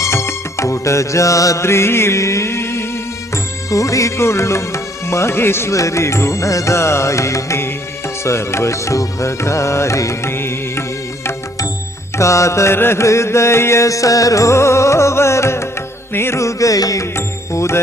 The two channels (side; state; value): both; normal; correlation 0.64